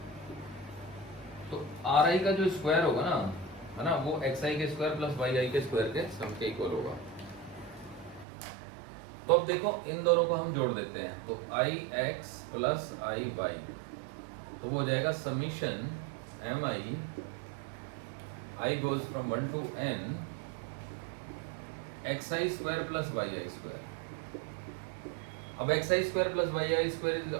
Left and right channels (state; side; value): drops out; left; at 8.2 s